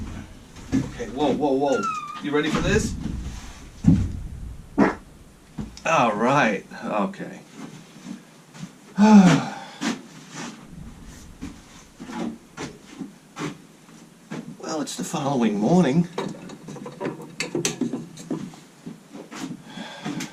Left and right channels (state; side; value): identical; both; correlation 1.00